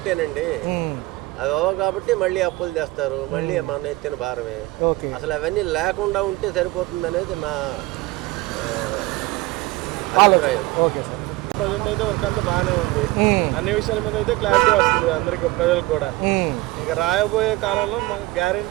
అవి అవ్వవు కాబట్టి మళ్ళీ అప్పులు తెస్తారు, మళ్ళీ మన ఎత్తిన భారమే. అసలు అవన్నీ లేకుండా ఉంటే సరిపోతుంది అనేది నా అభిప్రాయం. Okay sir. ప్రజెంట్ అయితే వర్క్ అంతా బాగానే ఉంది, అన్ని విషయాల మీద అయితే క్లారిటీ వస్తుంది అందరికి, ప్రజలకు కూడా. ఇక రాయబోయే కాలంలో మాకు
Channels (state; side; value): quieter; left; 20.4 dB